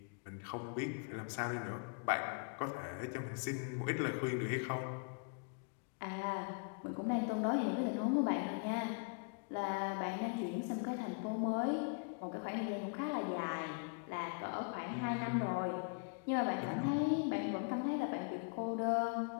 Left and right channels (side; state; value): right; quieter; 39.8 dB